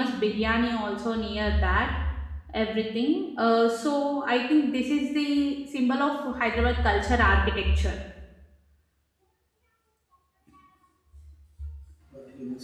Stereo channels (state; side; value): identical; both; correlation 1.00